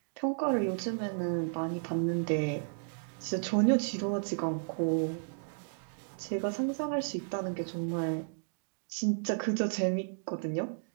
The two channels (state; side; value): silent; left; digital silence